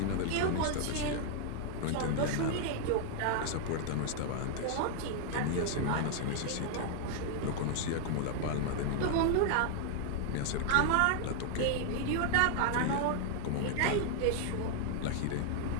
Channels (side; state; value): both; different; correlation 0.00